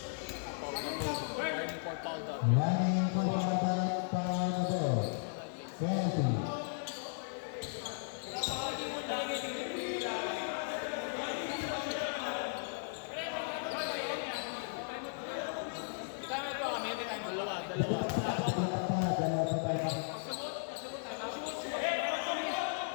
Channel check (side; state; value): right; silent; 54 dB below the other